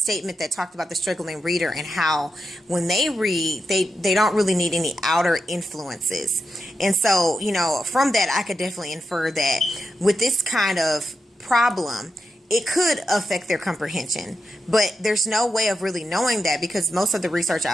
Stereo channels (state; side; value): normal; both; correlation 0.87